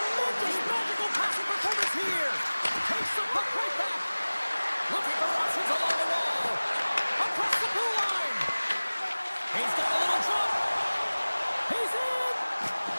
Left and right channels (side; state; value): both; inverted; correlation -1.00